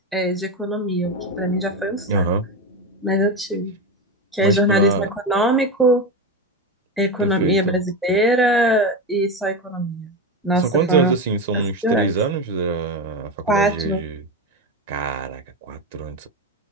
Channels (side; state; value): both; normal; correlation 0.17